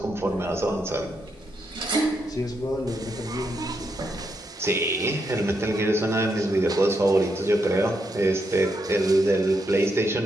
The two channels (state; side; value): normal; both; correlation 0.80